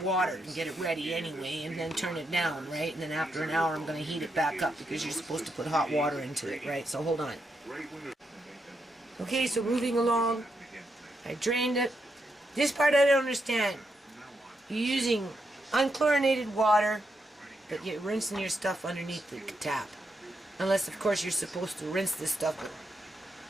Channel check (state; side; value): normal; both; correlation 0.82